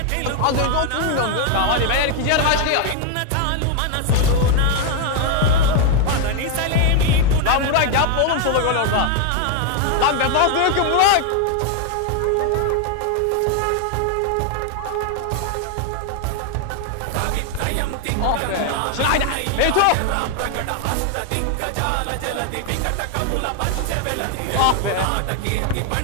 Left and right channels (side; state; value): both; different; correlation 0.01